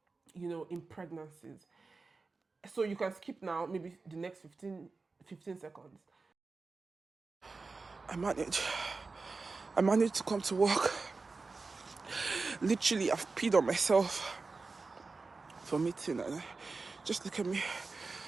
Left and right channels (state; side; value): quieter; left; 4.0 dB